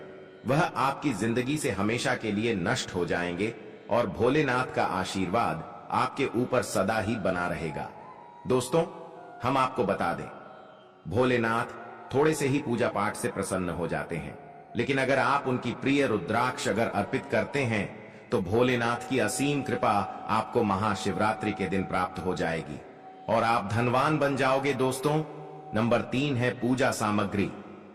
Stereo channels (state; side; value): identical; both; correlation 1.00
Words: वह आपकी जिंदगी से हमेशा के लिए नष्ट हो जाएंगे और भोलेनाथ का आशीर्वाद आपके ऊपर सदा ही बना रहेगा। दोस्तों, हम आपको बता दें, भोलेनाथ थोड़े से ही पूजा पाठ से प्रसन्न हो जाते हैं, लेकिन अगर आप उनकी प्रिय रुद्राक्ष अगर अर्पित करते हैं तो भोलेनाथ की असीम कृपा आपको महाशिवरात्रि के दिन प्राप्त हो जाएगी और आप धनवान बन जाओगे। दोस्तों, नंबर 3 है पूजा सामग्री।